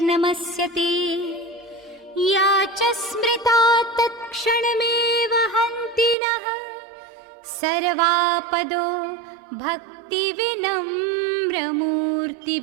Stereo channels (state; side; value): drops out; left; at 6.2 s